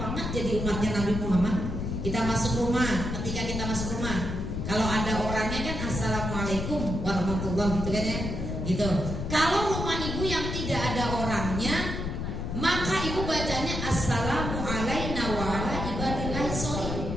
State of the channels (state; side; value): noise; left; rumble, 3 dB below the sound